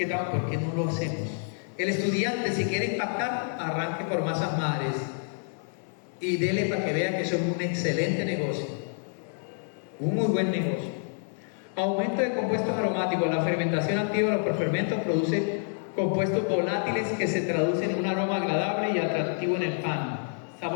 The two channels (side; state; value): right; silent; 59 dB below the other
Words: estamos, ¿por qué no lo hacemos? El estudiante, si quiere impactar, arranque por masas madres y dele para que vea que eso es un excelente negocio, un muy buen negocio. Aumento de compuestos aromáticos. La fermentación activa de los prefermentos produce compuestos volátiles que se traducen en un aroma agradable y atractivo en el pan.